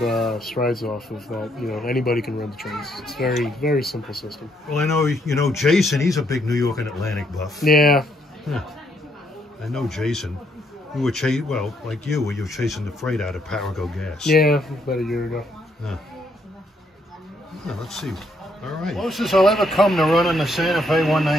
strides off of, that, you know, anybody can run the trains. It's very, very simple system. Well, I know, you know, Jason, he's a big New York and Atlantic buff. Yeah. I know Jason. We were well, like you, where you were chasing the freight out of Parago Gas. Yeah, about a year ago. Well, let's see. All right. Closest I'll ever come to running the Santa Fe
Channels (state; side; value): normal; both; correlation 0.73